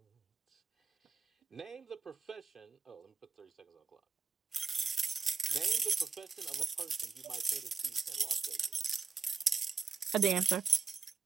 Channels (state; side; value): quieter; left; 4.9 dB